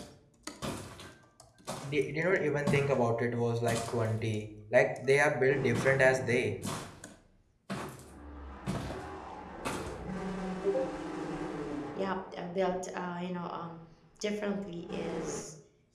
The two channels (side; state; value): both; identical; correlation 1.00